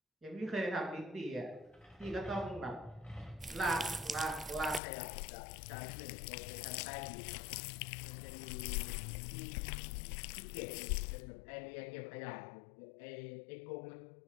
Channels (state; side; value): drops out; right; at 4.8 s